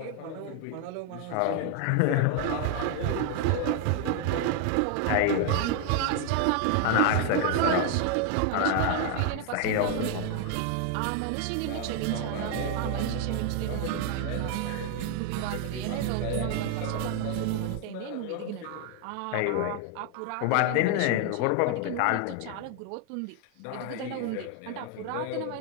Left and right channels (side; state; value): both; different; correlation 0.00